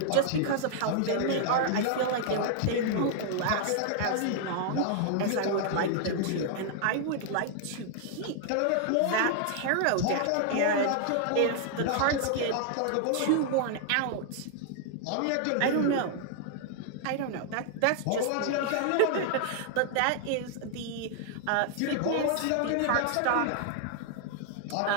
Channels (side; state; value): both; different; correlation -0.01